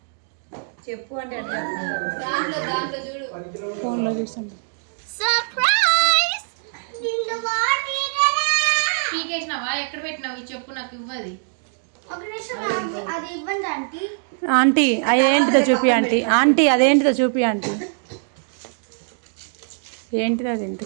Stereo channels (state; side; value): silent; left; digital silence